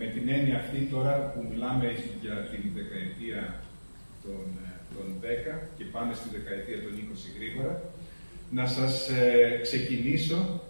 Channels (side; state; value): both; inverted; correlation -1.00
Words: με την έννοια αυτή τώρα που μιλάμε για την δεκαετία των 10 και πάμε στη δεκαετία των 20 γρήγορα, να σας ξεκινήσω.